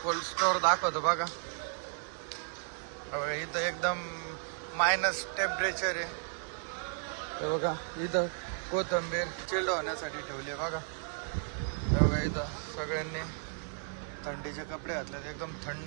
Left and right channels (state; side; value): silent; left; 55 dB below the other